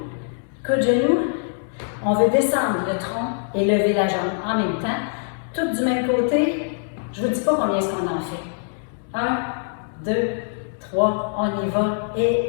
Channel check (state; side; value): silent; right; digital silence